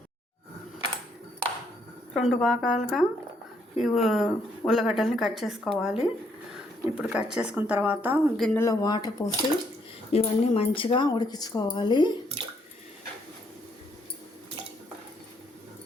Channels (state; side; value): normal; both; correlation 0.72